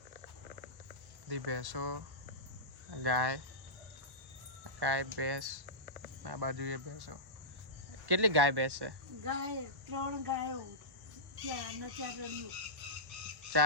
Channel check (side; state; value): left; late; 1.4 ms